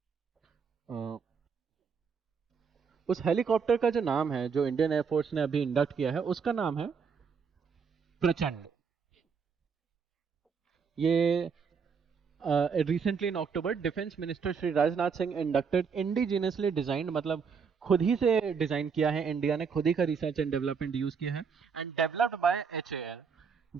उस हेलीकॉप्टर का जो नाम है जो इंडियन एयरफोर्स ने अभी इंडक्ट किया है, उसका नाम है प्रचंड। ये recently in October defence minister Shri Rajnath Singh inducted indigenously designed, मतलब खुद ही से डिजाइन किया है, इंडिया ने खुद ही का रिसर्च एंड डेवलपमेंट यूज किया है, एंड डेवलप्ड बाय एचएएल,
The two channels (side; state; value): left; quieter; 6.0 dB